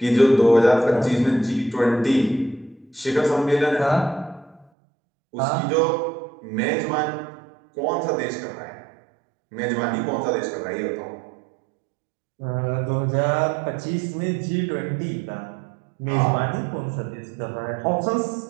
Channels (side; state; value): left; drops out; at 4.7 s